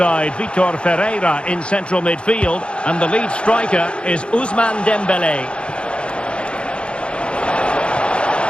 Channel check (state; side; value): late; right; 0.056 ms